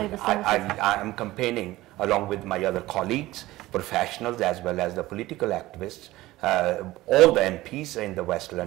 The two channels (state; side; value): quieter; left; 17.5 dB